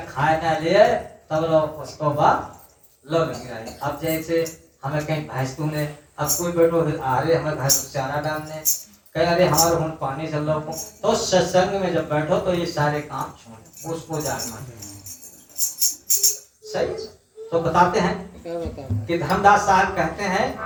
खाए ना ले तब लोग उसको बाद लोग गिराए। अब जैसे हमें कहीं भैंस ने, अब कोई बैठो अरे हमें भैंस को चारा डालने, कहीं अरे हमारे हम पानी चल रहा, तो सत्संग में जब बैठो तो ये सारे काम छोड़, उसको जागना सही। तो बताते हैं कि धर्मदास साहब कहते हैं,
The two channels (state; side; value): identical; both; correlation 1.00